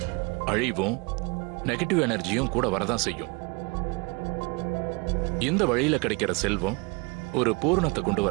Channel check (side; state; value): left; quieter; 29.0 dB